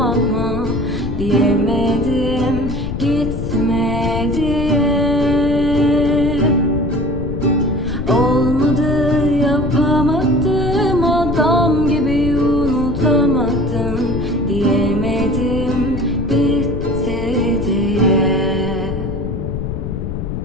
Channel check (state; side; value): noise; left; rumble, 5 dB below the sound